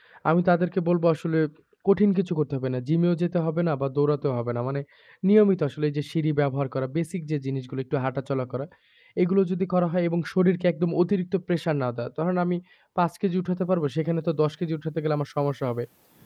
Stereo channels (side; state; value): both; identical; correlation 1.00